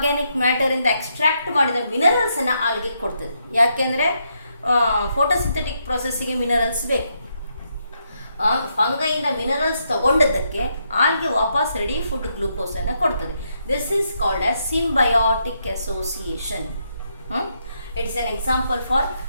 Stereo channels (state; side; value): inverted; both; correlation -0.78